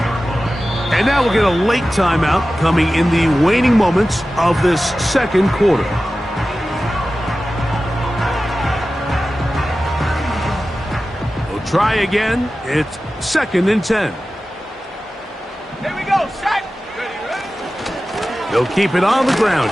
And now we'll get a late timeout coming in the waning moments of this second quarter. Try again. It's 2nd and 10. Here we go. Set. Ready. They'll keep it on the ground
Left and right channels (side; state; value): both; normal; correlation 0.95